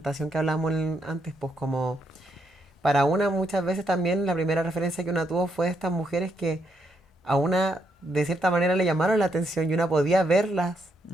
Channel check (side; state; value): both; normal; correlation 0.77